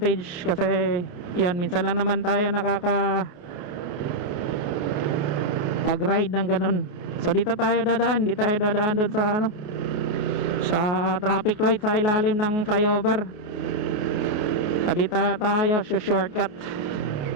Kasi yan, minsan lang naman tayo pag-ride ng ganun. So dito tayo dadaan. Dito tayo dadaan doon sa sa traffic light sa ilalim ng flyover. Dito tayo shortcut.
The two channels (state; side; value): late; right; 28 ms